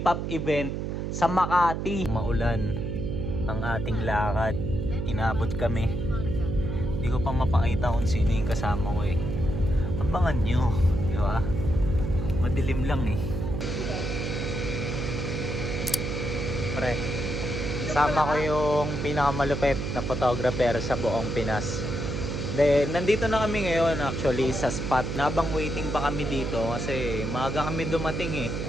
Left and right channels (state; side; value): noise; right; hum, 3 dB below the sound